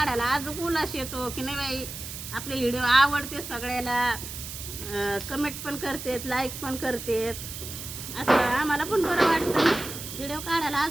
अजून उल्हास येतो की नाही बाई, आपले व्हिडिओ आवडते सगळ्याला, कमेंट पण करतेत, लाईक पण करतेत, असं आम्हाला पण बरं वाटतं. व्हिडिओ काढायला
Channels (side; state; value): right; noise; hiss, 9 dB below the sound